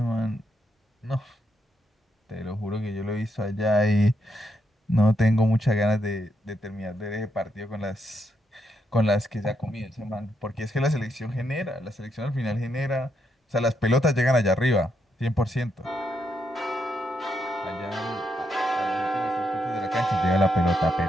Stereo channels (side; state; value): both; normal; correlation 0.79